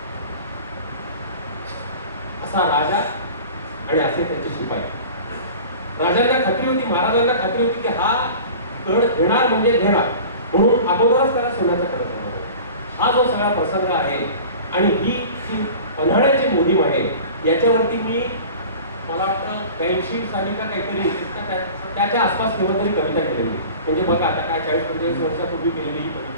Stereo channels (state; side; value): inverted; both; correlation -0.39